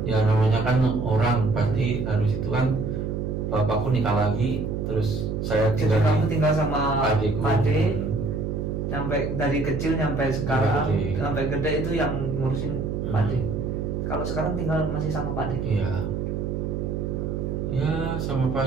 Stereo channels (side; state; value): right; noise; hum, 2 dB below the sound